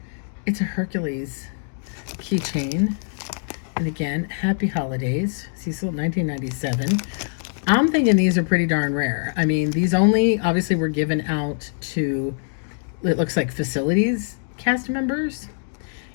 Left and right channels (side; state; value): right; silent; digital silence